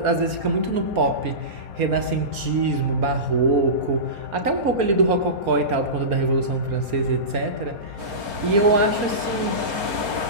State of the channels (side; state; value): left; late; 4.3 ms